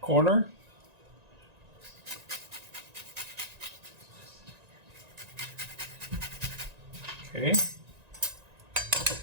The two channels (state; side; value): late; left; 1.9 ms